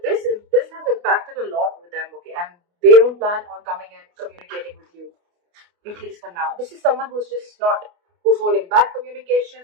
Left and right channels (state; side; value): late; left; 29 ms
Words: this has impacted a lot with them, okay? And they don't plan on coming and communicating with you, at least for now. This is someone who's holding back